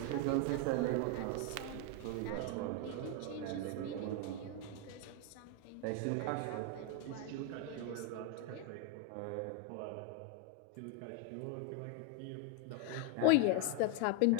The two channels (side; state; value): both; different; correlation 0.01